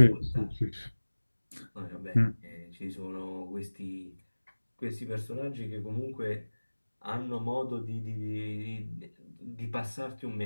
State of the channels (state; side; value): inverted; both; correlation -1.00